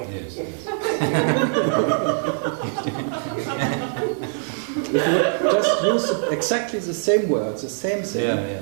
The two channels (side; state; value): left; silent; digital silence